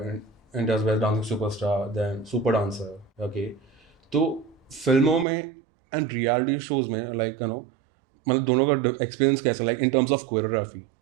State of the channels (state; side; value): drops out; left; at 5.2 s